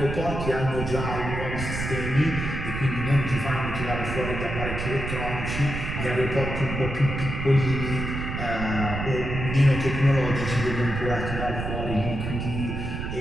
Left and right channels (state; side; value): noise; right; rumble, 4 dB below the sound